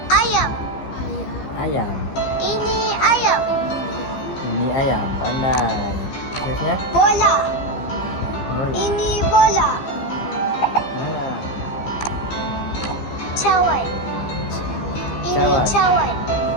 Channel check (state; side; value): late; right; 15 ms